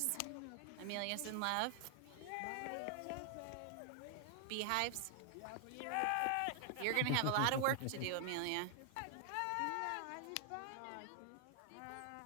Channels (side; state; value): both; different; correlation 0.00